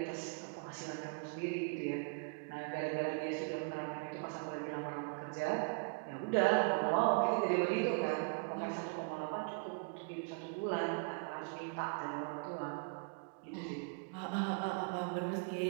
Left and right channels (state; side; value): quieter; left; 37.8 dB